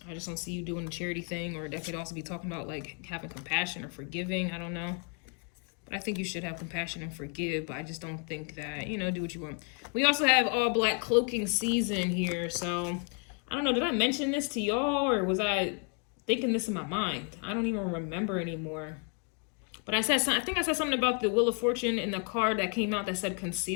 just don't see you doing the charity thing, or that could also be talking about like having compassion or forgiving. I don't know. But I think you should have compassion and forgive, but I just don't think that, you know, do what you want. We also have all black cloaking season here. So I don't know, did I mention this to y'all, or was I thinking this in my mind? I don't even remember anymore. But I think I said something about the Wheel of Fortune in the card that came out that said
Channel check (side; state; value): right; quieter; 39.2 dB